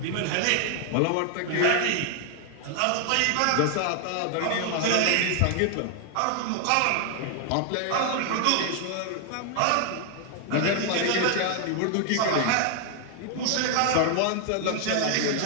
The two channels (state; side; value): different; both; correlation 0.00